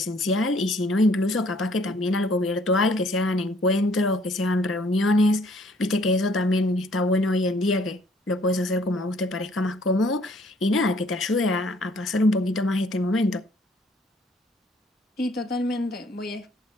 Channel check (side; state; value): both; normal; correlation 0.61